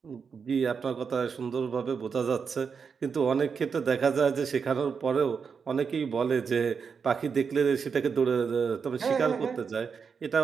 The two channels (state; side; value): quieter; left; 6.0 dB